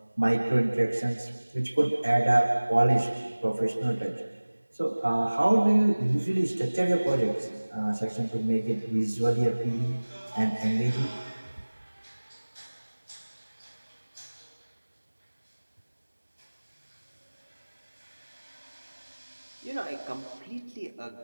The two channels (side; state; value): both; inverted; correlation -1.00